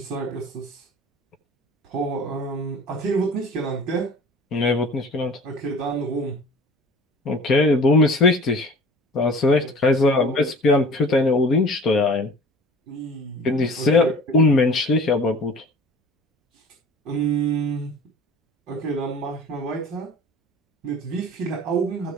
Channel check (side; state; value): both; normal; correlation 0.43